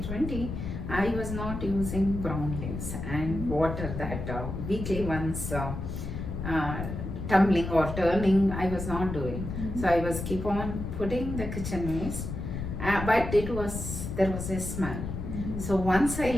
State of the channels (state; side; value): noise; left; rumble, 6 dB below the sound